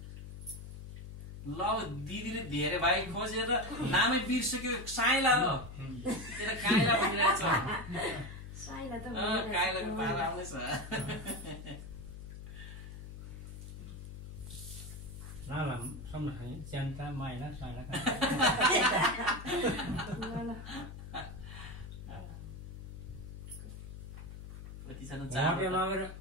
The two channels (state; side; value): noise; left; hum, 11 dB below the sound